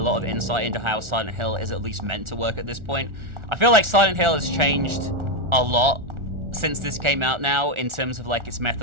of insight into how Silent Hill is at least meant to work at this point. I feel like Silent Hill has changed a lot since this came out now, in terms of like its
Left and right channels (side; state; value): left; late; 1.4 ms